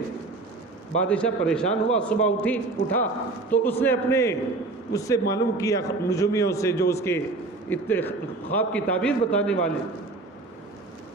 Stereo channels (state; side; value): quieter; left; 3.5 dB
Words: بادشاہ پریشان ہوا، صبح اٹھا تو اس نے اس سے معلوم کیا نجومیوں سے جو اس کے خواب کی تعبیر بتانے والے،